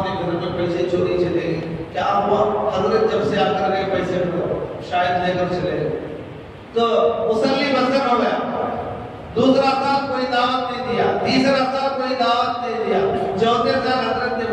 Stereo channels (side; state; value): both; identical; correlation 1.00